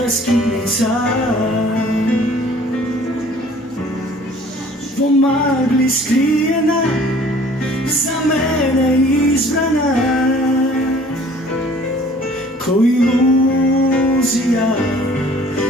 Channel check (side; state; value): both; normal; correlation 0.52